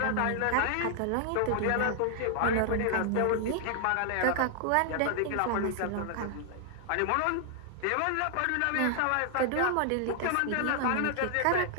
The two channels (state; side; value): different; both; correlation 0.00